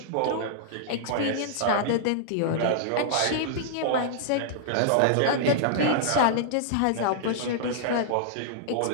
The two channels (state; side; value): different; both; correlation -0.01